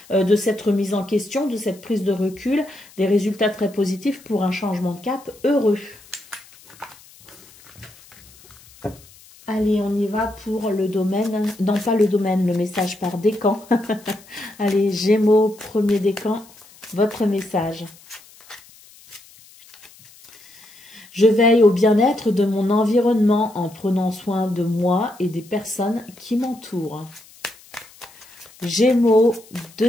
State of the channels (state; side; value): noise; left; hiss, 24 dB below the sound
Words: de cette remise en question, de cette prise de recul, des résultats très positifs pour un changement de cap heureux. Allez, on y va pour le domaine, non pas le domaine, le message par décan. Allez, Gémeaux, premier décan, votre message. Je veille au bien-être de mon environnement en prenant soin de moi et des personnes qui m'entourent. Gémeaux,